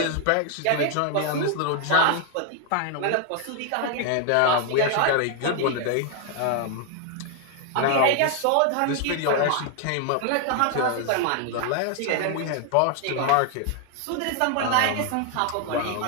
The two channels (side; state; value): both; different; correlation 0.00